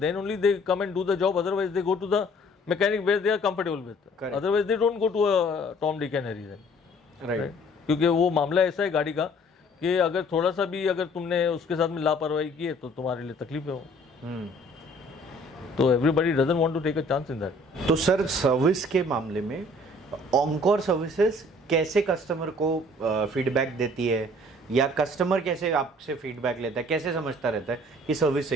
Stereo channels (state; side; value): normal; both; correlation 0.55